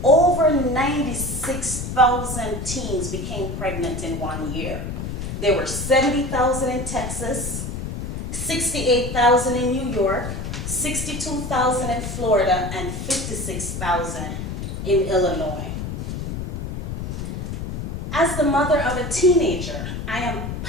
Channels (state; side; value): noise; left; rumble, 5 dB below the sound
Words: over 96,000 teens became pregnant in 1 year. There were 70,000 in Texas, 68,000 in New York, 62,000 in Florida, and 56,000 in Illinois. As the mother of a teenager, I am